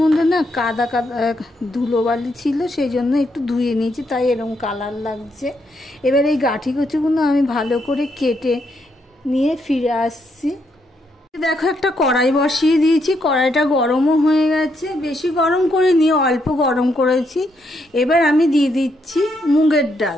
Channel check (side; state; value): both; normal; correlation 0.77